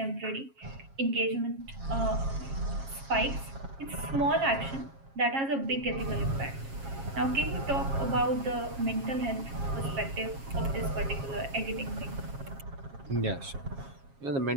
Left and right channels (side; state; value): left; late; 7.4 ms